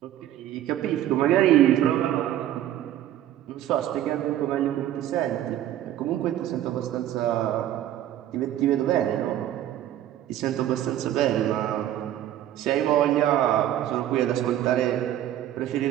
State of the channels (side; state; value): left; quieter; 12.3 dB